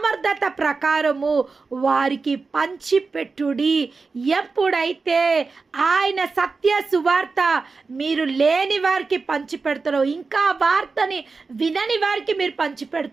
ప్రకారము వారికి పంచిపెట్టుడి. ఎప్పుడైతే ఆయన సత్య సువార్త మీరు లేని వారికి పంచిపెడతారో, ఇంకా వార్తని వినని వారికి మీరు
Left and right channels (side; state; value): left; quieter; 4.3 dB